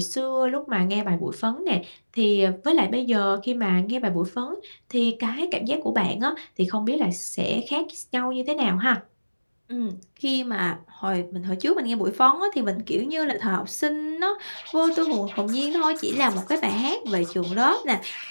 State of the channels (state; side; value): inverted; both; correlation -1.00